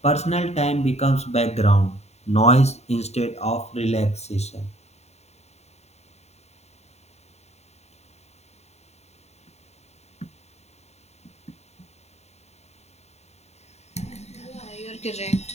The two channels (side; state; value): right; late; 0.32 ms